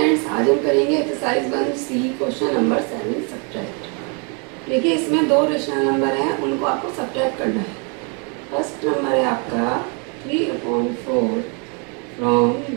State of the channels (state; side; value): quieter; left; 36.3 dB